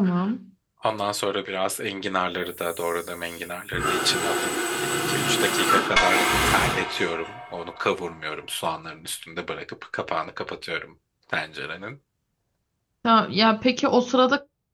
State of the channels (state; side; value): identical; both; correlation 1.00